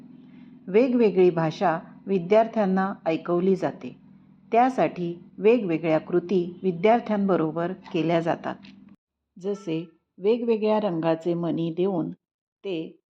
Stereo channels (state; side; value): identical; both; correlation 1.00